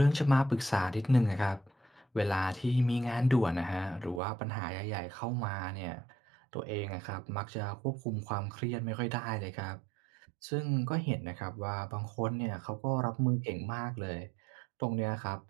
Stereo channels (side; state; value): left; drops out; at 4.2 s